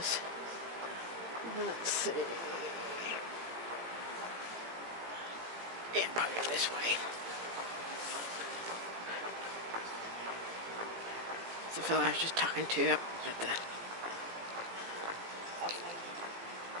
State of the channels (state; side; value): late; left; 18 ms